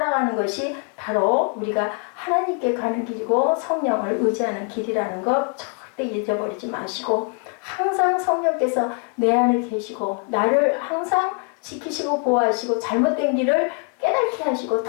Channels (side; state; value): right; quieter; 36.2 dB